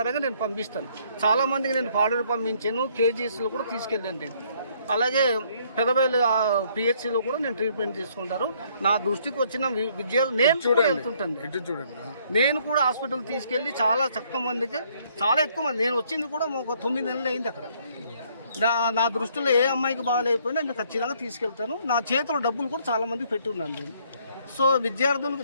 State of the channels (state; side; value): inverted; both; correlation -0.66